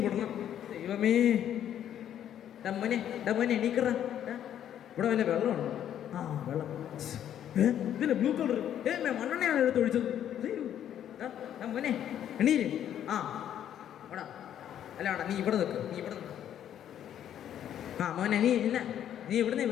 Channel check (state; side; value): quieter; right; 10.3 dB